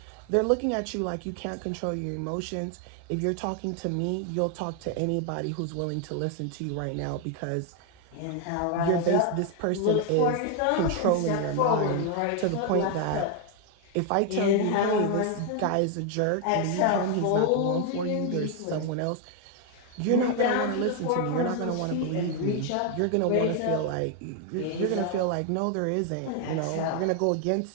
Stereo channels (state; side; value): different; both; correlation 0.00